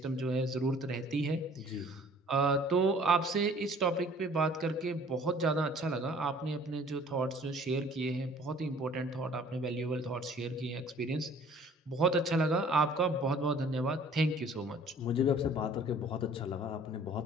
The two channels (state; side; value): normal; both; correlation 0.53